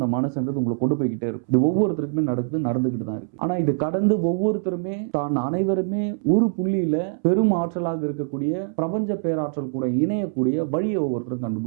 மனசுன்றது உங்களை கொண்டு போய்கிட்டே இருக்கும். இது ஒவ்வொருத்தருக்குமே நடந்துக்கிட்டு தான் இருக்குது. ஆனால் இது கடந்து ஒவ்வொருத்தருமே தான் அனைவருமே ஒரு புள்ளியில் பெரும் ஆற்றலாக இருக்கக்கூடிய பிரபஞ்ச பேராற்றல் கூட இணையக்கூடிய வழியை ஒவ்வொருத்தரும்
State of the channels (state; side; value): silent; left; 63 dB below the other